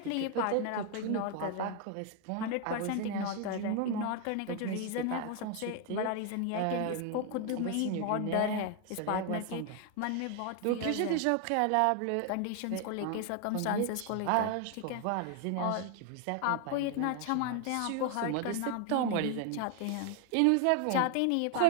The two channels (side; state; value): both; different; correlation 0.01